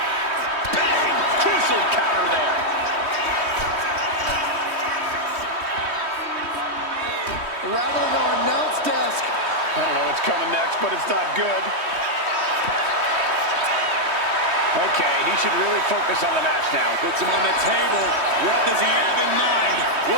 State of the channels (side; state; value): left; late; 3.2 ms